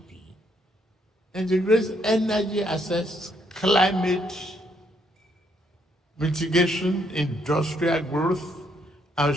integrates energy access, climate mitigation, industrial growth, and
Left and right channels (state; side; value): normal; both; correlation 0.72